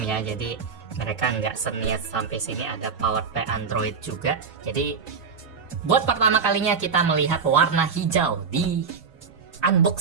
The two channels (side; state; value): left; quieter; 5.7 dB